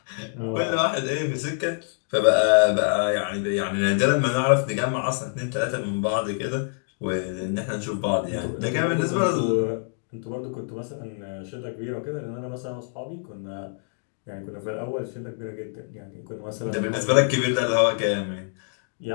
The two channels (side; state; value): right; silent; digital silence